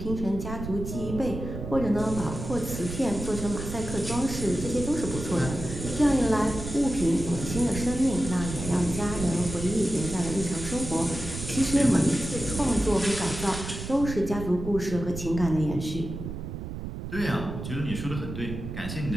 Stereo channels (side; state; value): right; noise; rumble, 7 dB below the sound